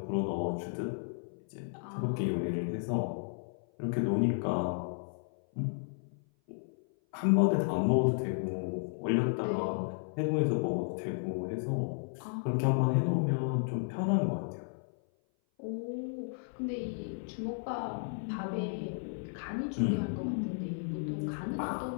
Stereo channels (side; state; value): right; silent; 55 dB below the other